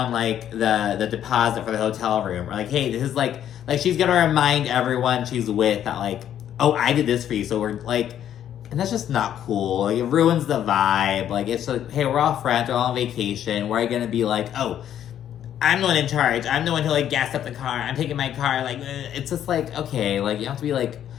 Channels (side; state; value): right; quieter; 10.4 dB